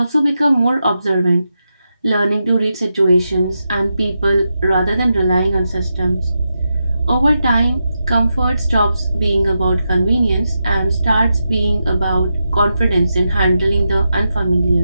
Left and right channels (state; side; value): inverted; both; correlation -0.87